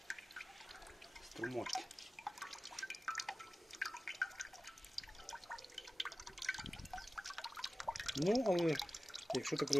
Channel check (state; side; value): normal; both; correlation 0.96